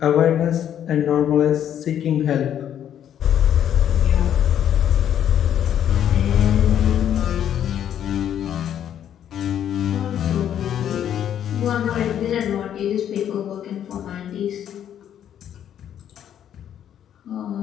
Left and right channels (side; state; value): right; quieter; 10.0 dB